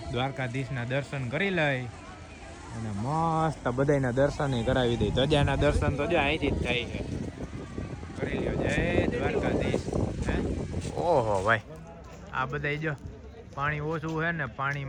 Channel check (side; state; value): both; identical; correlation 1.00